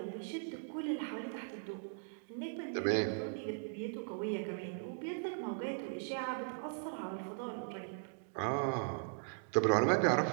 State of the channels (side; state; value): left; silent; digital silence